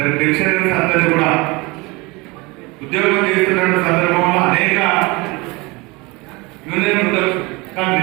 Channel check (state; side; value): quieter; left; 25.0 dB